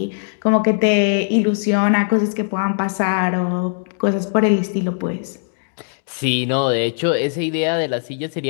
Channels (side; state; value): right; silent; digital silence